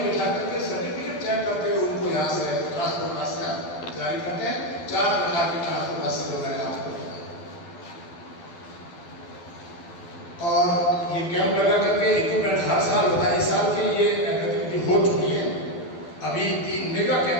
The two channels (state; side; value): late; right; 12 ms